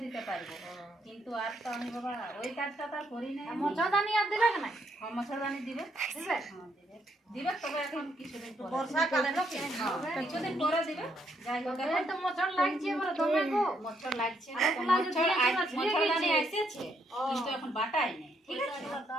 দিতে পারবো। কিন্তু আর তো আমি বাবা ওই কাজটা তো আর করি না। মশাদানি আর দিলে না? মশাদানি দিবে, দিবে? হ্যাঁ দিবে, দিবে, তবে এখন কিছুদিন পরে। বর্ষাকালে নাকি? হ্যাঁ, কিছুদিন পরে দিবে। যাই হোক এই এখন তো মশার লাগছে বলে দমে গো। মচ্ছর লাগছে না, আর তো ওগুলা যে মচ্ছরদানি দিয়ে এসেছে কিন্তু এখন বাটাই নেই, ঠিক আছে?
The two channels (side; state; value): both; normal; correlation 0.74